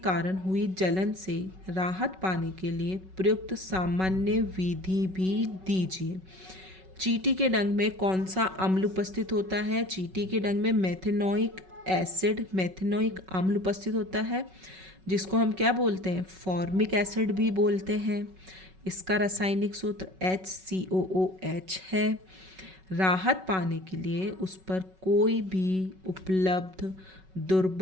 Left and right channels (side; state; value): left; late; 5.3 ms